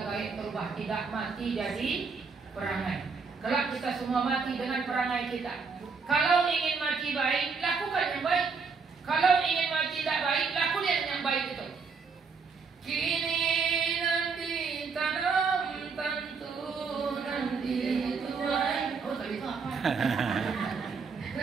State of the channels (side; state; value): left; quieter; 5.1 dB